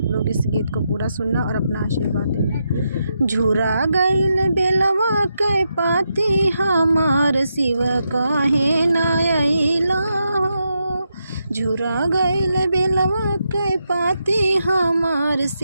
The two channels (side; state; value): both; inverted; correlation -0.84